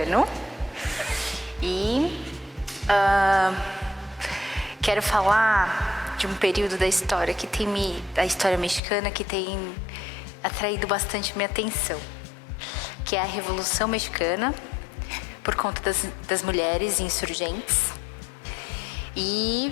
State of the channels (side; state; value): right; drops out; at 8.8 s